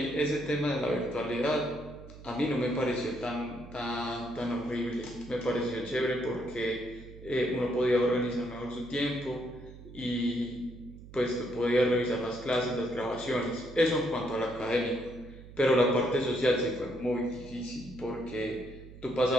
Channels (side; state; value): right; noise; hum, 17 dB below the sound